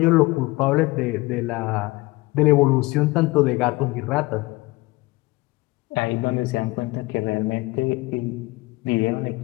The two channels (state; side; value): quieter; right; 22.2 dB